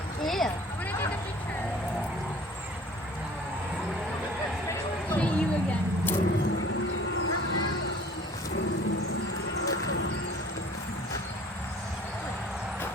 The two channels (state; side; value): normal; both; correlation 0.49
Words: Yeah. See you again.